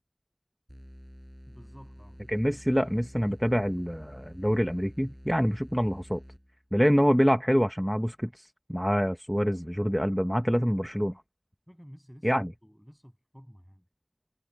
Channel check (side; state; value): both; identical; correlation 1.00